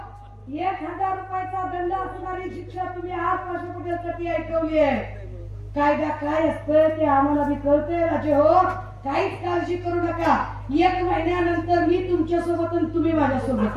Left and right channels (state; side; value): identical; both; correlation 1.00